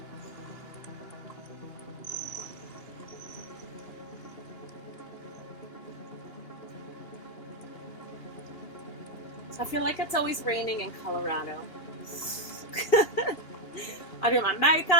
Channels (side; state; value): right; late; 2.8 ms